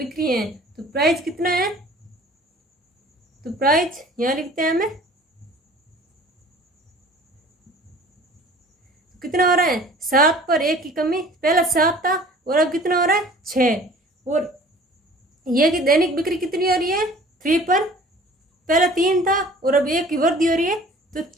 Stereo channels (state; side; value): normal; both; correlation 0.48